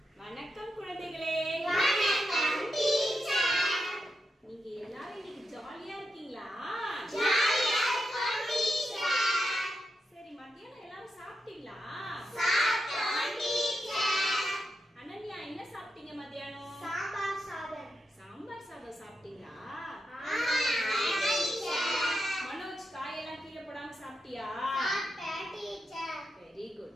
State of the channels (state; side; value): normal; both; correlation 0.86